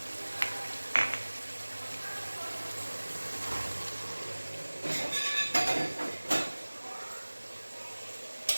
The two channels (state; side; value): inverted; both; correlation -1.00